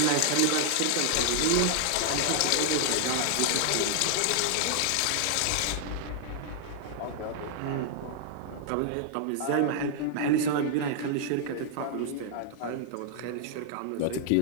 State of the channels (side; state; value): both; different; correlation 0.00